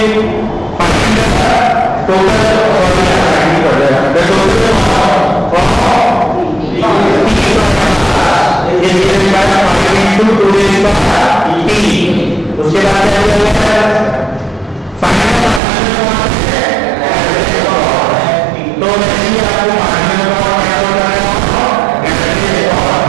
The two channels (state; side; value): drops out; left; at 15.6 s